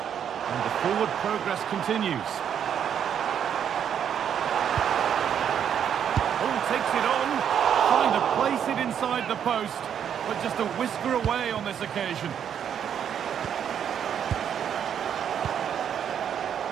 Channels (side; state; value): left; quieter; 8.7 dB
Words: Forward progress continues. Oh, takes it on. Trying to place it inside the post, but just a whisker away on this occasion.